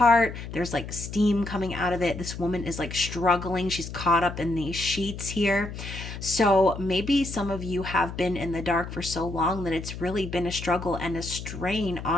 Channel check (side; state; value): left; noise; hum, 9 dB below the sound